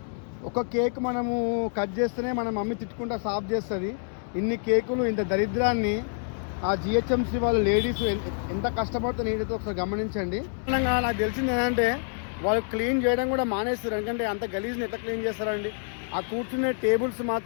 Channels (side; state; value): right; silent; 60 dB below the other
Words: ఒక కేక్ మనము కట్ చేస్తేనే మన మమ్మీ తిట్టుకుంటా సాఫ్ చేస్తుంది. ఇన్ని కేకులు, ఇంత దరిద్రాన్ని ఆ జిహెచ్ఎంసీ వాళ్ళు లేడీస్ ఎంత కష్టపడుతూ నీటితో ఒకసారి గమనించండి. నాకు తెలిసింది ఏంటంటే వాళ్ళు క్లీన్ చేయడం కూడా మానేస్తారు. ఎందుకంటే అంత గలీజ్ని ఎంత క్లీన్ చేస్తారండి. ఆ కూర్చునే టేబుల్స్